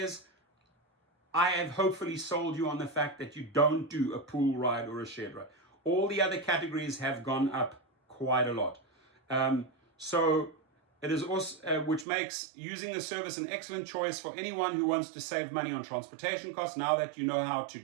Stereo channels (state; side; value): drops out; left; at 12.1 s